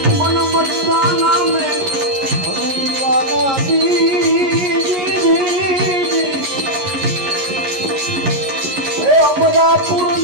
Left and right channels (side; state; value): left; late; 11 ms